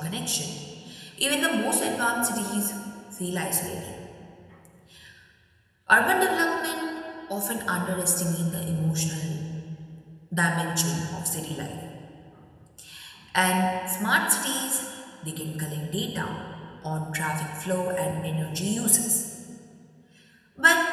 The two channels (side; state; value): both; identical; correlation 1.00